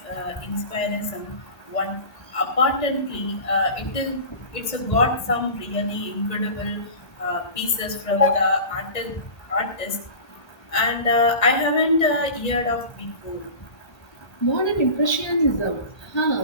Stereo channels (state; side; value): late; right; 1.8 ms